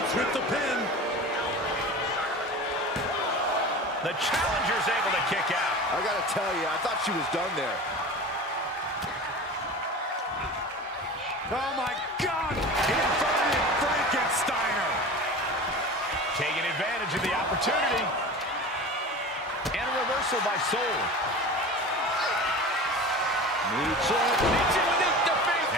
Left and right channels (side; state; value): both; normal; correlation 0.34